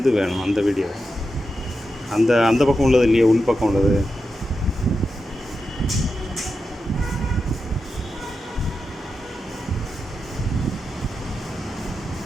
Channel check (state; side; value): normal; both; correlation 0.89